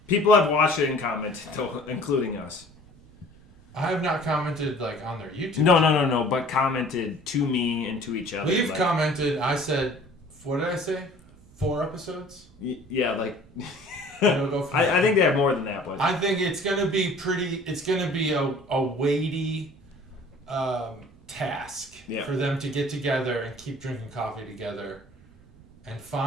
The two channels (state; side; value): noise; right; rumble, 25 dB below the sound